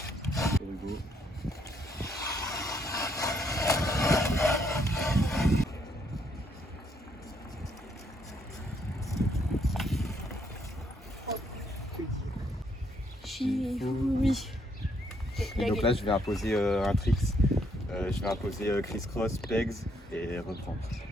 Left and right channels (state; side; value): normal; both; correlation 0.72